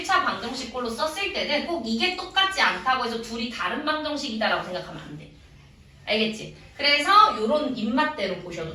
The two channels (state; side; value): identical; both; correlation 1.00